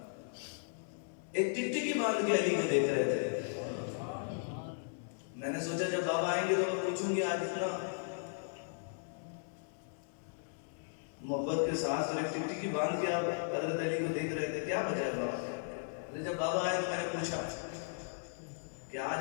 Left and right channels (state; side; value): silent; right; digital silence